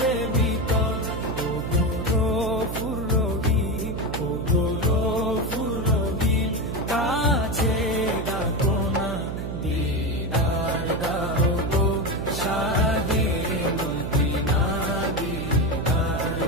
ভিতর। ও গো গফুর রহিম, ও গো গফুর রহিম, কাছে ডাকো না, দিদার দাও গো শাহে মদিনা, দিদার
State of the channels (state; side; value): noise; right; hum, 5 dB below the sound